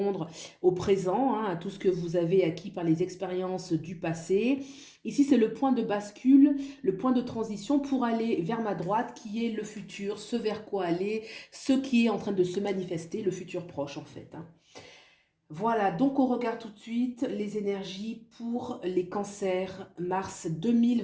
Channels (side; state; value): both; identical; correlation 1.00